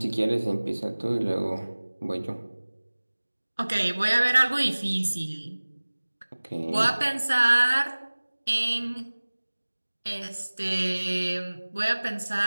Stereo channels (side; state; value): both; inverted; correlation -1.00